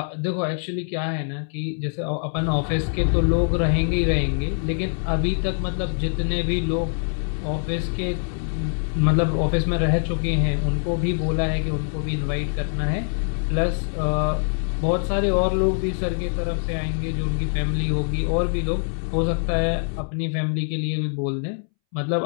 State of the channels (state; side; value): silent; right; 63 dB below the other